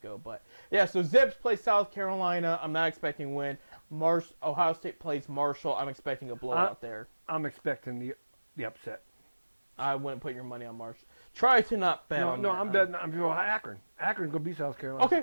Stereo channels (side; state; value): both; inverted; correlation -1.00